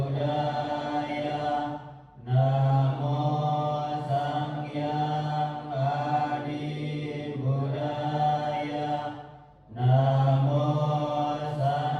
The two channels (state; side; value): identical; both; correlation 1.00